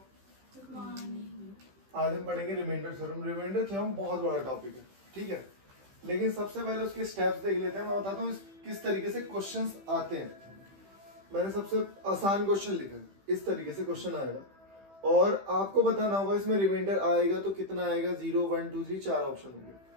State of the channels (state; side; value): late; left; 15 ms